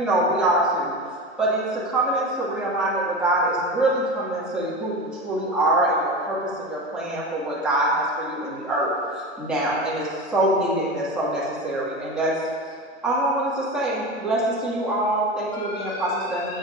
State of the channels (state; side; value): normal; both; correlation 0.26